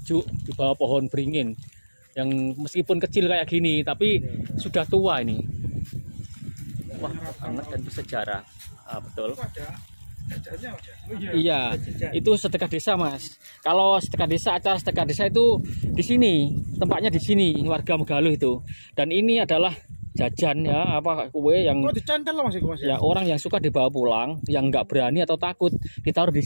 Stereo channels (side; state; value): both; inverted; correlation -1.00